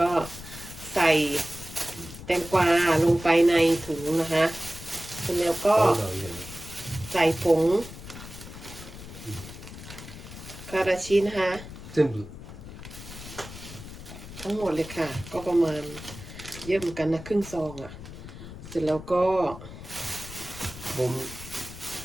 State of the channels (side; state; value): left; noise; rumble, 13 dB below the sound